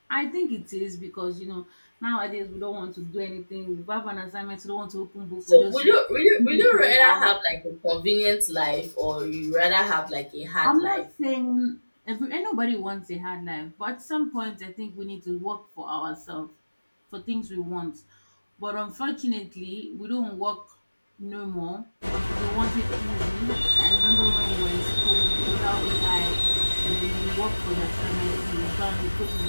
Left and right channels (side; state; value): both; inverted; correlation -1.00